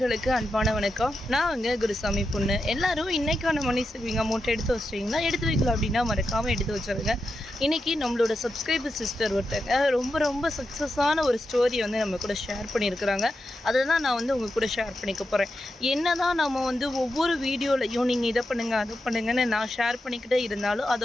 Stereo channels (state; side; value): normal; both; correlation 0.88